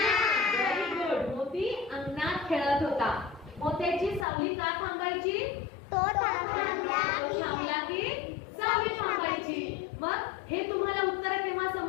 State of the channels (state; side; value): drops out; right; at 4.2 s